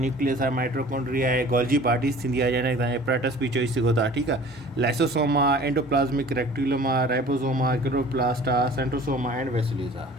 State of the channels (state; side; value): normal; both; correlation 0.46